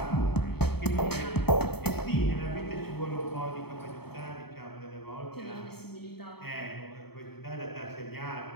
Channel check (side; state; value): right; late; 0.97 ms